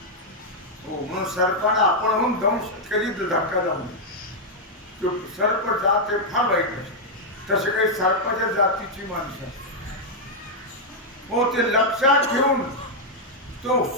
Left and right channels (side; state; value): both; normal; correlation -0.03